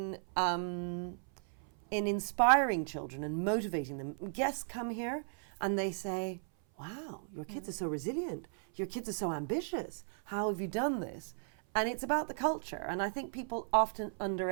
inspiring children and motivating them. Guests come here and they say, wow, your kids are so resilient. Your kids are so ambitious. How have you done this? And it's about the culture. And I think people often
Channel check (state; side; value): silent; left; 54 dB below the other